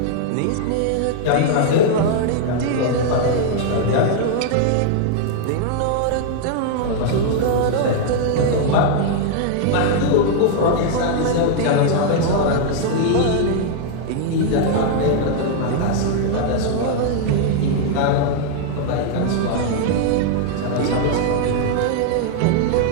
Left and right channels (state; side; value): different; both; correlation 0.00